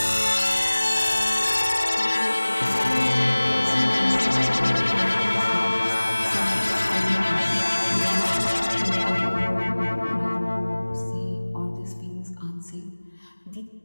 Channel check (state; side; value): inverted; both; correlation -1.00